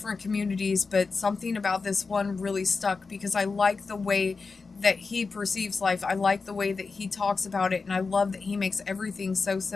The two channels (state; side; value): quieter; right; 4.4 dB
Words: communities, but something about this one really stuck because I like the way that he perceives life. I like the way that he talks about it, and I love that he makes everything so